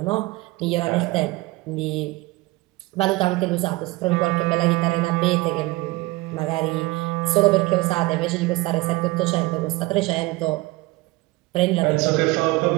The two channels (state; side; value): quieter; left; 21.2 dB